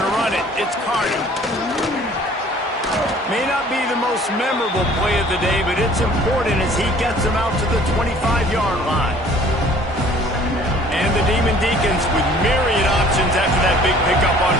run it. It's Carter. May not be the most memorable play of the day, but it's important as he gets them out to the 25-yard line. And the Demon Deacons with myriad options after that big pickup on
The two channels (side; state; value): both; normal; correlation 0.52